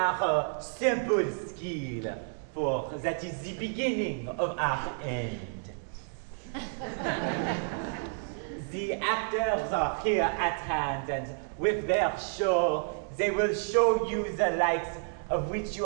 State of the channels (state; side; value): silent; left; 58 dB below the other